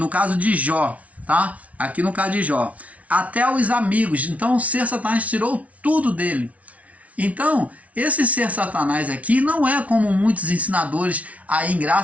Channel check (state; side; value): late; left; 0.067 ms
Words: caso de Jó, tá? Aqui no caso de Jó. Até os amigos. Então o ser Satanás tirou tudo dele. Então esse ser Satanás aqui não é como muitos ensinadores aí em